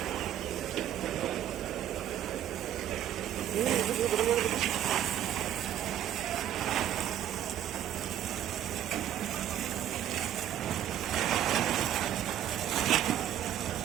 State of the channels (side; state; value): left; quieter; 11.0 dB